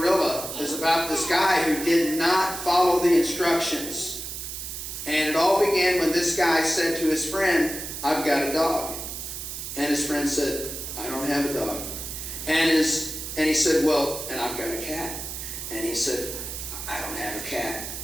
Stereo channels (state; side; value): noise; right; hiss, 7 dB below the sound